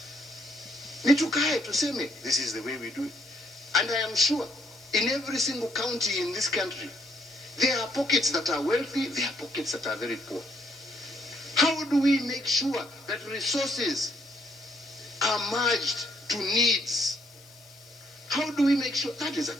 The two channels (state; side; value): noise; left; hiss, 24 dB below the sound